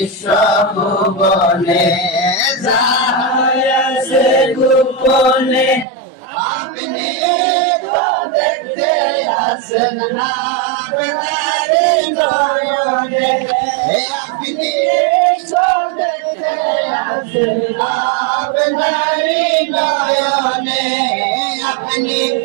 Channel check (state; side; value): drops out; left; at 5.9 s